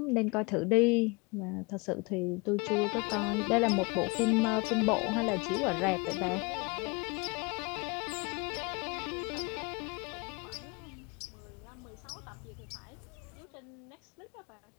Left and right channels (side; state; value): right; quieter; 28.4 dB